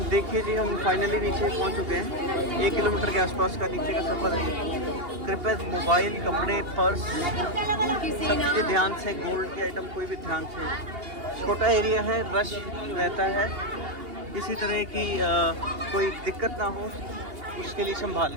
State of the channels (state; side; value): late; left; 2.8 ms